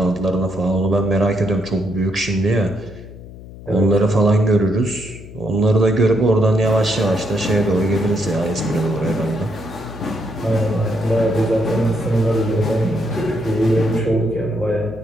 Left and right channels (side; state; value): left; noise; hum, 16 dB below the sound